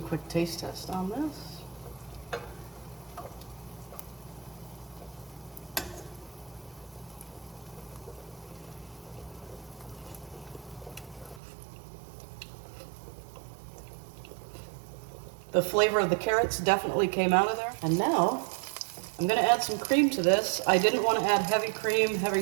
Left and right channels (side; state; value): left; drops out; at 11.4 s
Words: taste test on this. The flavor of the carrots definitely came out of there. And now I'm gonna add some cream to this. I didn't want to add heavy cream. Heavy